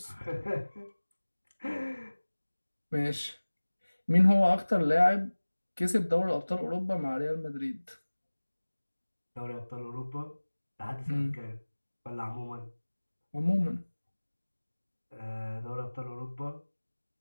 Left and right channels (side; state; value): both; inverted; correlation -1.00